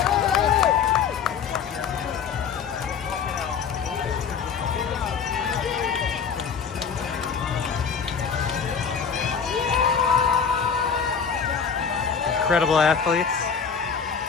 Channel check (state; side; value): quieter; right; 6.5 dB